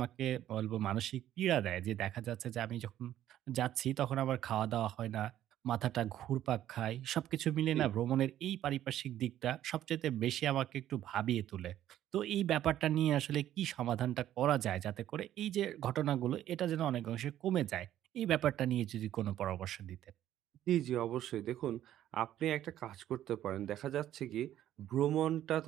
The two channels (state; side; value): quieter; left; 12.2 dB